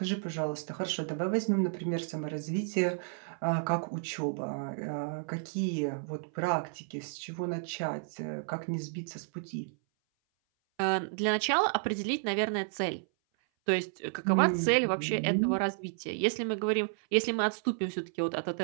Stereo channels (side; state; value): left; silent; 56 dB below the other